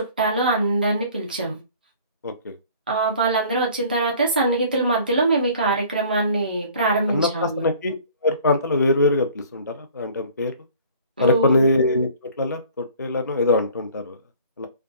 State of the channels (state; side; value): inverted; both; correlation -0.50